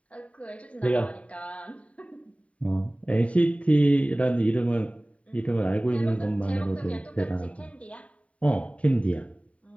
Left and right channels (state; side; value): late; right; 0.065 ms